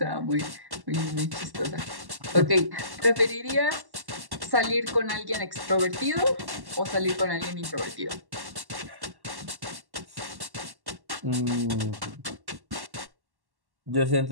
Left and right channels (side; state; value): left; late; 1.1 ms